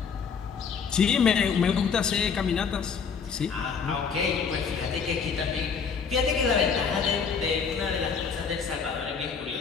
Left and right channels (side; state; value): right; quieter; 6.0 dB